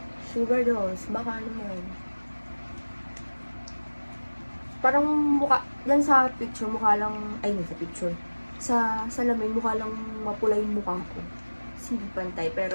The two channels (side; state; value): both; inverted; correlation -1.00